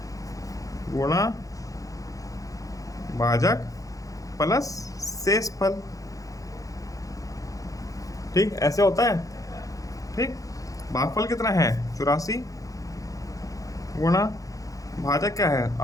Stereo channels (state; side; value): late; right; 0.17 ms